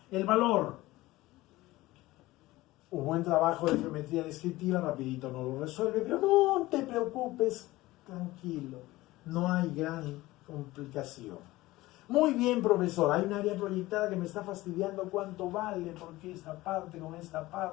El valor. Un buen trabajo de geometría descriptiva, rapidito no lo resuelve, pero no te preocupes, tranquilo, no hay gran complicación. Muy bien, profesor, hay un área proyectada que me está fastidiando cuánto vale, porque esta parte con esta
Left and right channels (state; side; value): quieter; right; 18.4 dB